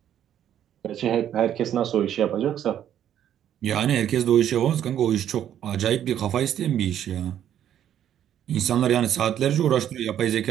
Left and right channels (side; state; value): left; quieter; 10.4 dB